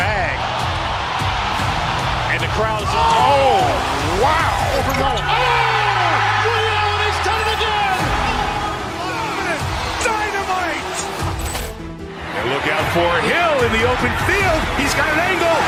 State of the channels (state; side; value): identical; both; correlation 1.00